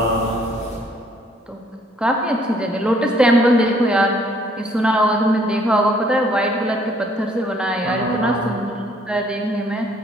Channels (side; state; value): both; normal; correlation 0.63